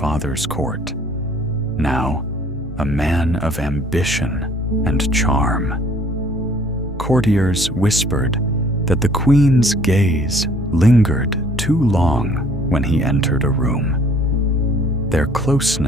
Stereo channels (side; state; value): both; normal; correlation 0.57